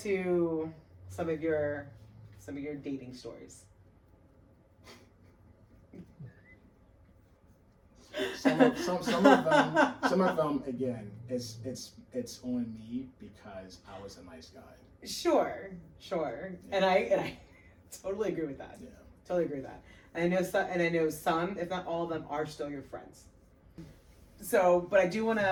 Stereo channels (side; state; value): both; identical; correlation 1.00